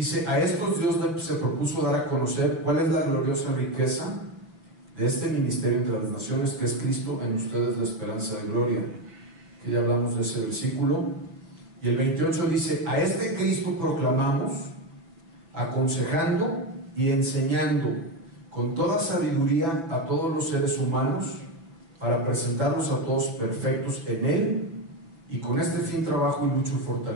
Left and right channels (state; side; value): late; left; 6.0 ms